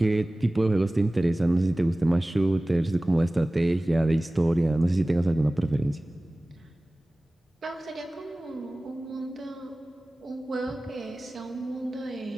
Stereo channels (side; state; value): both; normal; correlation 0.98